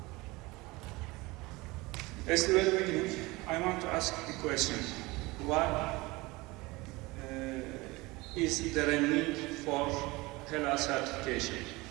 As the very beginning, I want to ask the question, why is there a need for halal certification?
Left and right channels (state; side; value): quieter; left; 22.4 dB